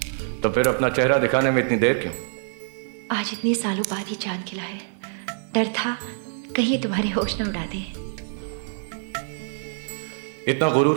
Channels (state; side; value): silent; left; 62 dB below the other